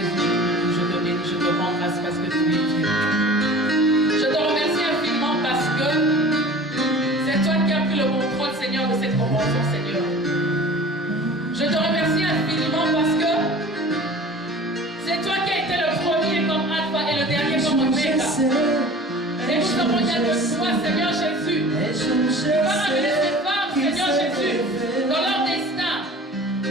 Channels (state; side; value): normal; both; correlation 0.42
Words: je te bénis, je te rends grâce parce que tu es Dieu. Je te remercie infiniment parce que c'est toi qui as pris le contrôle, Seigneur, de cette convention, Seigneur. Je te remercie infiniment parce que c'est toi qui as été le premier comme Alpha et le dernier comme Oméga. Et nous avons besoin de toi, Seigneur Jésus. Tu vas amener ces femmes, Seigneur Jésus, dans leur destin.